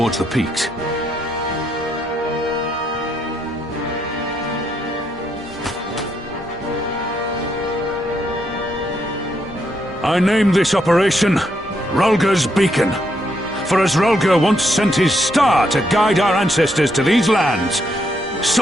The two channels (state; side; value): normal; both; correlation 0.77